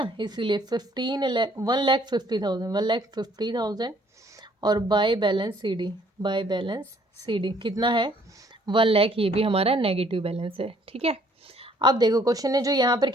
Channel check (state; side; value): normal; both; correlation 0.62